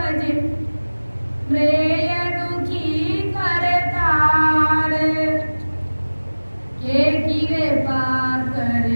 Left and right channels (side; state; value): both; inverted; correlation -1.00